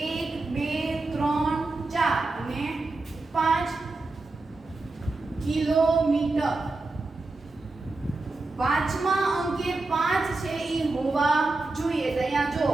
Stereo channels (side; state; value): left; quieter; 3.3 dB